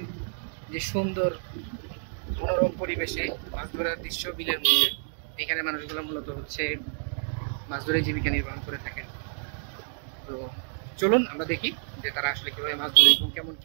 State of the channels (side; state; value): left; silent; digital silence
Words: যে সুন্দর মনোরম পরিবেশে মাছ ধরার দৃশ্য বিলের মধ্যে। এখানে মানুষগুলো মূলত হচ্ছে মাছ ধরে জীবিকা নির্বাহ করে থাকেন। তো চলুন আমরা দেখি যে তারা আসলে কিভাবে মাছ ধরে এবং কেমন